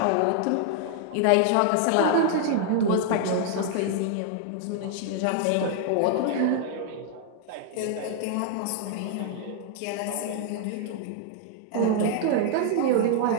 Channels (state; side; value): different; both; correlation -0.01